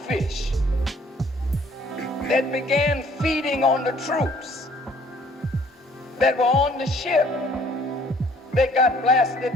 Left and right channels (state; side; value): normal; both; correlation 0.58